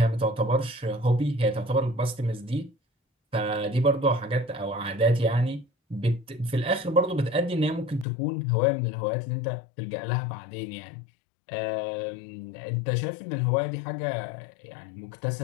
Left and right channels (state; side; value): drops out; right; at 8.1 s